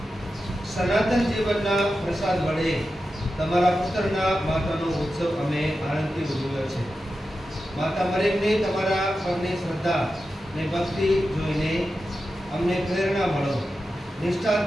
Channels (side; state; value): both; normal; correlation 0.91